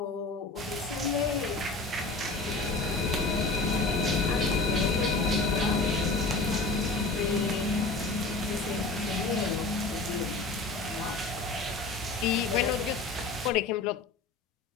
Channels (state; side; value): quieter; right; 3.5 dB